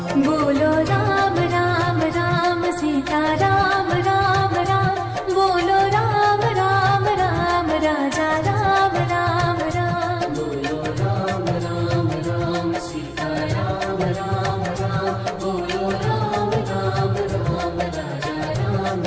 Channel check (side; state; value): both; identical; correlation 1.00